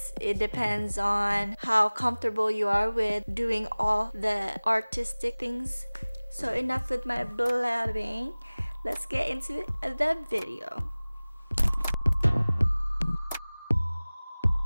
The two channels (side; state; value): both; inverted; correlation -0.99